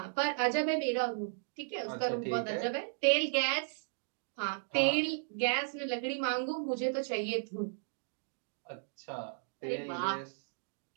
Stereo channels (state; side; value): silent; left; digital silence